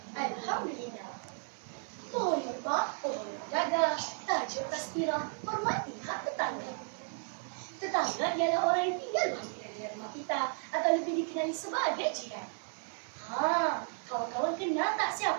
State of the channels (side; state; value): left; silent; 55 dB below the other